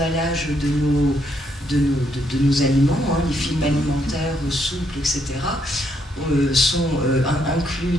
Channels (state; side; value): normal; both; correlation 0.74